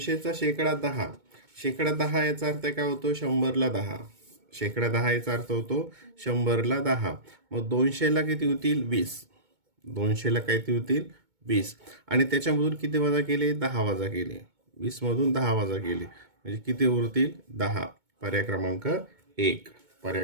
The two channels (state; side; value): late; left; 2.2 ms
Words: शेकडा 10, शेकडा 10 याचा अर्थ काय होतो? 100ला 10. शेकडा 10 याचा अर्थ होतो 100ला 10. मग 200ला किती होतील? 20. 200ला किती होतील? 20. आणि त्याच्यामधून किती वजा केले? 10 वजा केले. 20 मधून 10 वजा केले म्हणजे किती उरतील? 10. पर्याय क्रमांक 1.